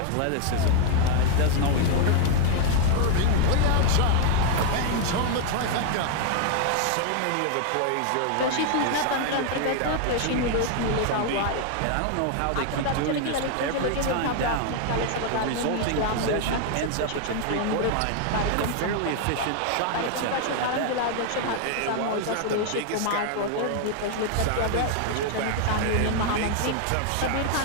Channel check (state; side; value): different; both; correlation 0.00